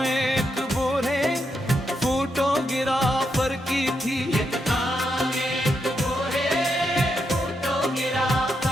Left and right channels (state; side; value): normal; both; correlation 0.82